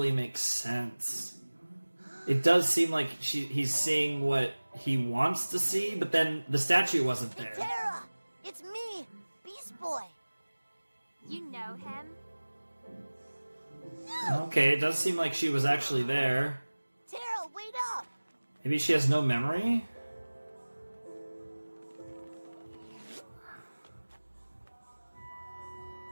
make sense. It does seem like he's seeing what he wants to see, but then the statue wasn't there. Tara! It's me, Beast Boy. You know him? Okay, it does seem like she was actually there. Tara, wait up! Maybe she has no memory?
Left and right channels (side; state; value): both; inverted; correlation -1.00